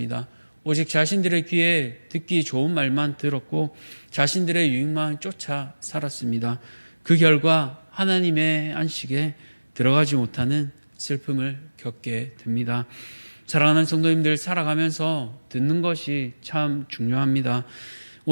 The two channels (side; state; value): both; inverted; correlation -1.00